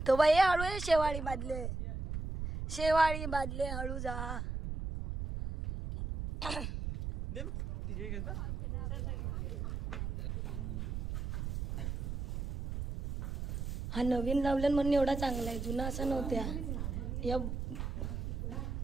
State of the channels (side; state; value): right; noise; rumble, 4 dB below the sound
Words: तो बाई हळू आहे. शेवाळी बादले, शेवाळी बादले, हळू जा. हा नवीन लावलं म्हणून एवढा चांगला आहे. जुना असा नव्हत्या. या